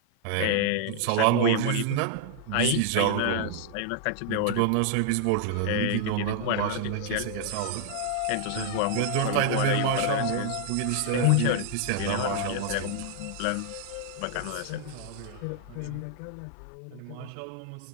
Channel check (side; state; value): both; different; correlation 0.00